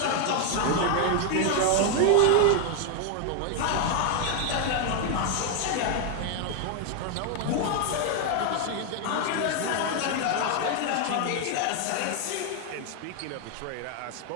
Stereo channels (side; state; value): both; different; correlation 0.00